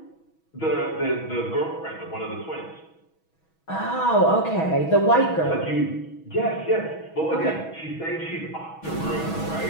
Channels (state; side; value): late; right; 6.2 ms